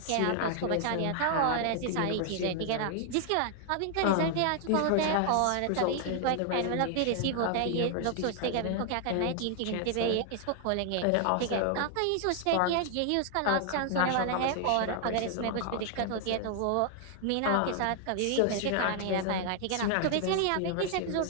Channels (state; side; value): different; both; correlation 0.00